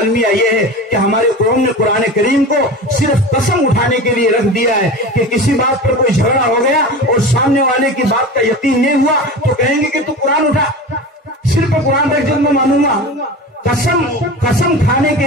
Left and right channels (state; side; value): normal; both; correlation 0.31